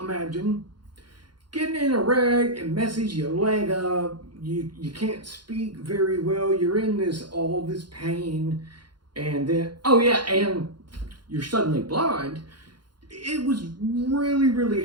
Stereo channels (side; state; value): left; late; 0.71 ms